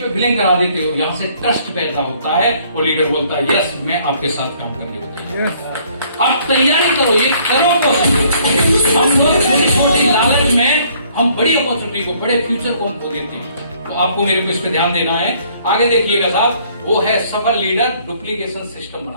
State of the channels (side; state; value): both; inverted; correlation -0.62